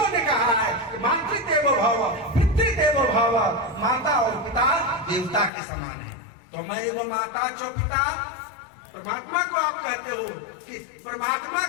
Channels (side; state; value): right; drops out; at 5.5 s